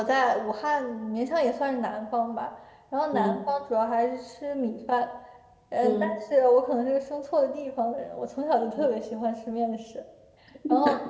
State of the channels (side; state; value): both; identical; correlation 1.00